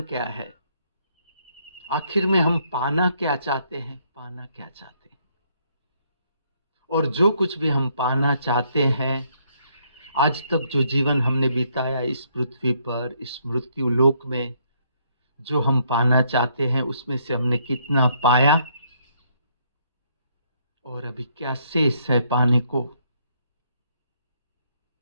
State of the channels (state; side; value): inverted; both; correlation -0.70